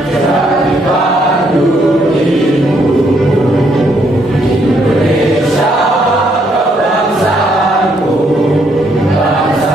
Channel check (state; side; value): normal; both; correlation 0.72